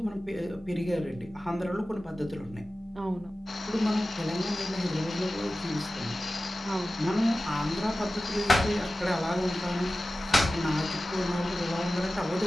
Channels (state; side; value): normal; both; correlation 0.95